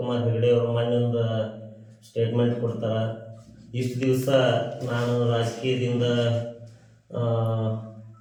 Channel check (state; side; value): identical; both; correlation 1.00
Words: ಹೆಗಡೆ ಅವರು ಮೊನ್ನೆ ಸ್ಟೇಟ್ಮೆಂಟ್ ಕೊಡ್ತಾರ. ಇಷ್ಟು ದಿವಸ ನಾನು ರಾಜಕೀಯದಿಂದ